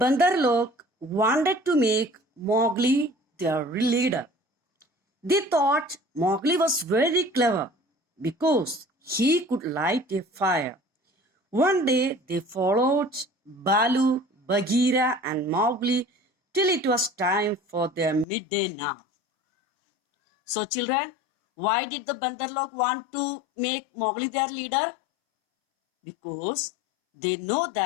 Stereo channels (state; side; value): drops out; right; at 18.2 s